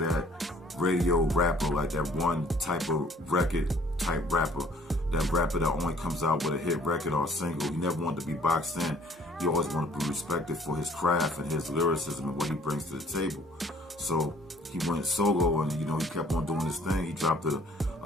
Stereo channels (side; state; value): both; normal; correlation 0.57